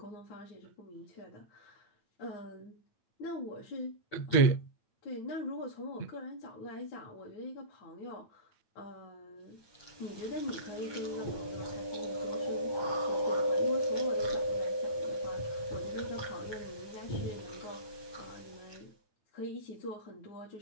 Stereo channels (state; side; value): late; right; 9.1 ms